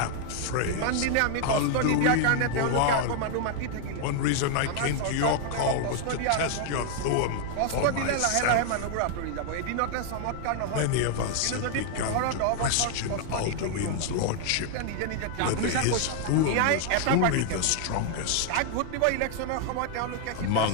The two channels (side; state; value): both; different; correlation 0.00